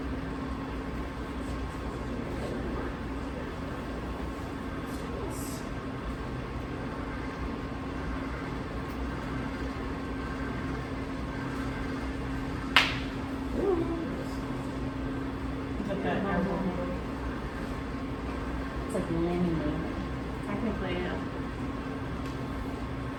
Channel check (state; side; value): identical; both; correlation 1.00